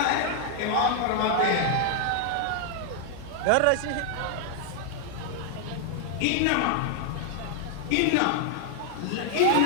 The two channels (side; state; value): both; different; correlation 0.00